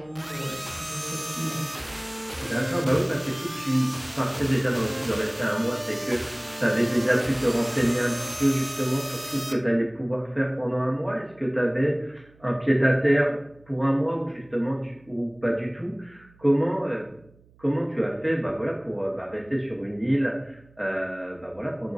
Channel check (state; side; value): noise; right; hum, 29 dB below the sound